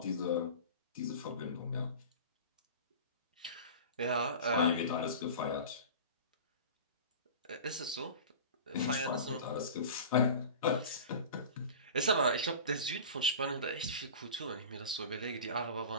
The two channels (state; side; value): inverted; both; correlation -0.35